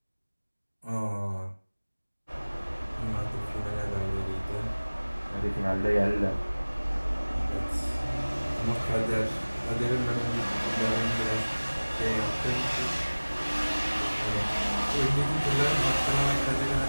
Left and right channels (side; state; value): both; inverted; correlation -1.00